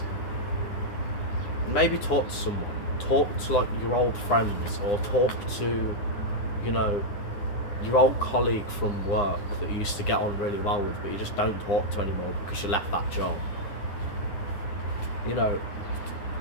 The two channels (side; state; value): right; late; 9.8 ms